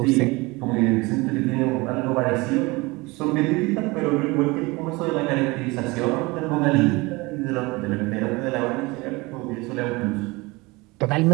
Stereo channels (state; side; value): quieter; left; 23.8 dB